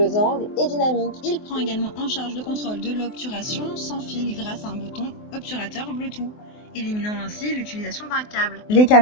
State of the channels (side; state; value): right; late; 24 ms